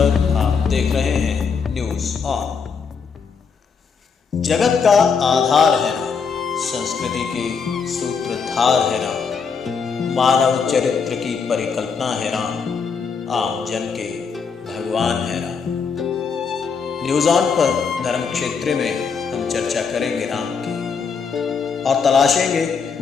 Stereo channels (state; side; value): quieter; right; 5.8 dB